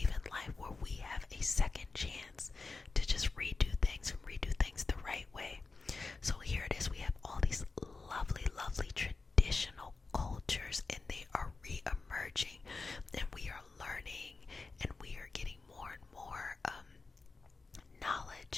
in life where we have a second chance to just redo things and redo things the right way. So here it is, we have all these lovely, lovely traditional cultures, and they are re-emerging, and we are learning, and we are getting more and more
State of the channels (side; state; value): right; quieter; 4.0 dB